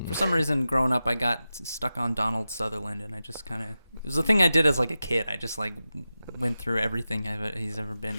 For some reason, growing up, I got stuck on Donald Sutherland, and I just kind of... It was a thing I did as, like, a kid. I just, like, went through everything he's ever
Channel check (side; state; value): both; inverted; correlation -0.93